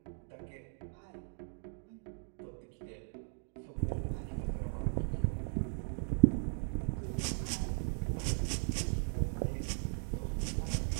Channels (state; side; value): silent; left; 53 dB below the other